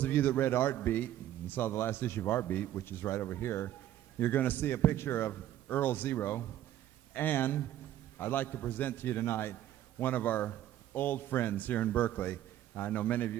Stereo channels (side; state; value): left; quieter; 12.5 dB